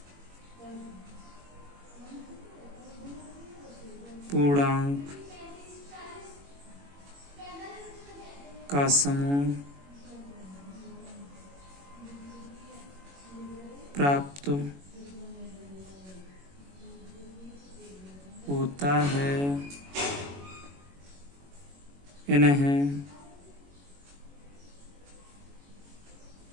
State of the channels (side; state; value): left; late; 21 ms